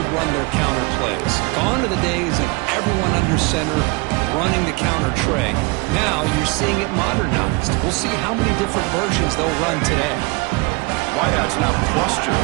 run their counter plays. Gone are the days of everyone under center running the counter tray. Now you're seeing it modernized. We'll see how many different versions they'll run today. Wideouts now clustered.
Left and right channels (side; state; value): left; quieter; 27.0 dB